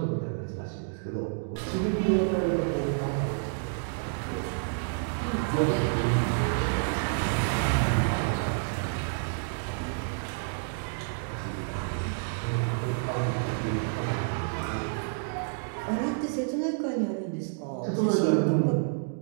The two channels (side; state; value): left; silent; digital silence